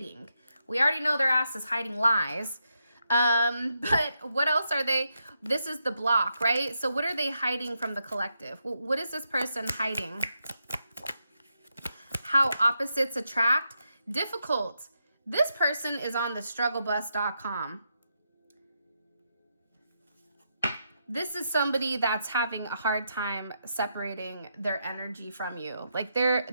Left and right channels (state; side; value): inverted; both; correlation -0.83